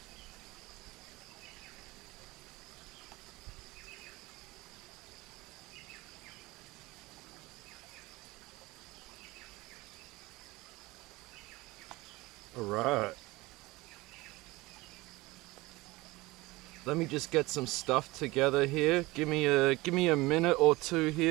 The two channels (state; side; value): quieter; left; 21.1 dB